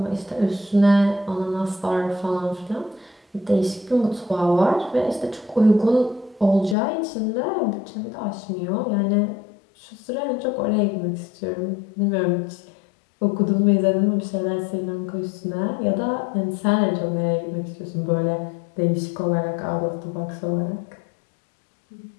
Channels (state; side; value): drops out; right; at 6.8 s